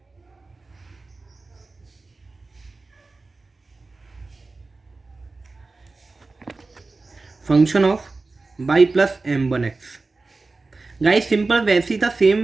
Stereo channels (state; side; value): quieter; left; 3.6 dB